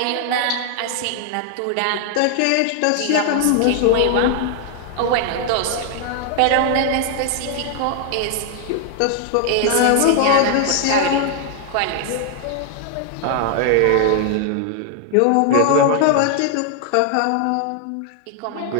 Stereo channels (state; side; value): different; both; correlation 0.00